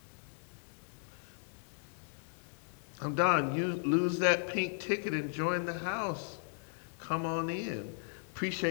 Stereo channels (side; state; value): right; silent; digital silence